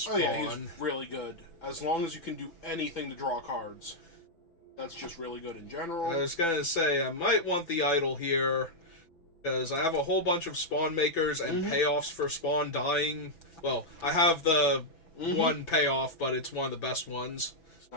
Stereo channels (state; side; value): late; right; 6.0 ms